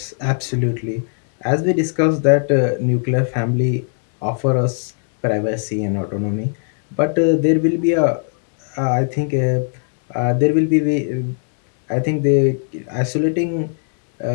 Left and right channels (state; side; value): silent; right; 58 dB below the other